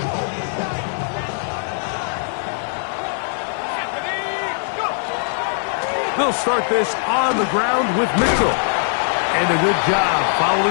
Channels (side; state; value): right; silent; digital silence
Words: They'll start this on the ground with Mitchell. And a good job